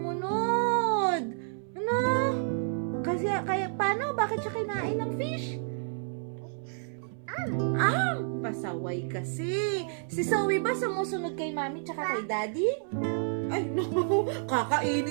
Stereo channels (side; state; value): left; silent; 58 dB below the other